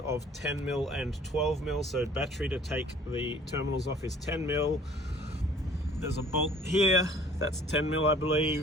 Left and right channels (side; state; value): both; normal; correlation 0.53